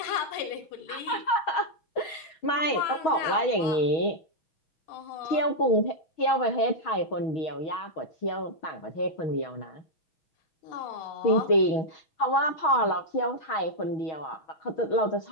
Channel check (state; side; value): late; right; 6.3 ms